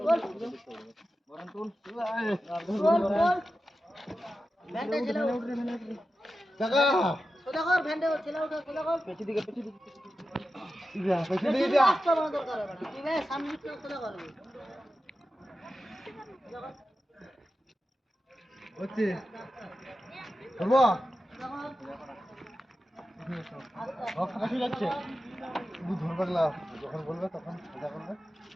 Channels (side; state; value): both; normal; correlation 0.92